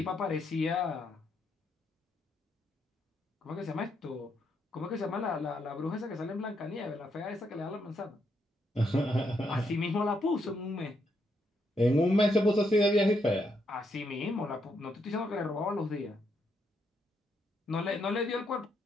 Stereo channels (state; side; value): normal; both; correlation 0.77